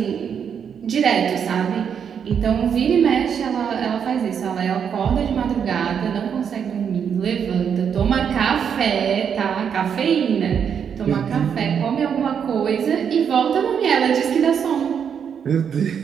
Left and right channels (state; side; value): quieter; left; 7.6 dB